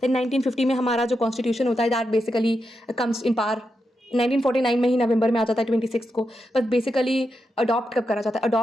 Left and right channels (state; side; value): normal; both; correlation 0.86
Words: देन 1950 में हमारा जो कॉन्स्टिट्यूशन होता है that basically comes in power, 1949 में ही नवंबर में आ जाता है 26 को, बट बेसिकली अडॉप्ट कब करा जाता है,